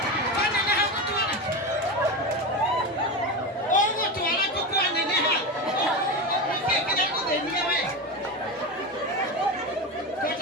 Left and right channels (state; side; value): normal; both; correlation 0.19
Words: waneneha gũtwara ũgũtwara gũkwaneneha ũkĩkĩra gũthĩnia we